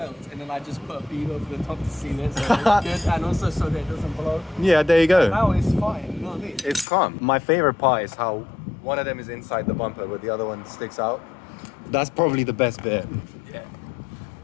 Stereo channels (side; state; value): right; drops out; at 6.9 s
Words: And then I just put a beam over the top to seal it, so it's good. And also so that it doesn't blow. Yeah, there you go. Now it's fine, you know what I mean? It's calm. My favorite part is how one of them is inside the bumper, but the other one sticks out. That's probably the best bit. Yeah.